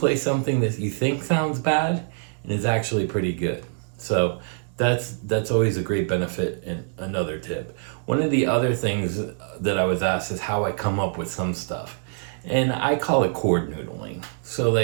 something that you think sounds bad, and it's actually pretty good. So that's always a great benefit. And another tip. One of the other things that I was asked is how I come up with some stuff. And I call it chord noodling. So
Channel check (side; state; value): left; silent; 62 dB below the other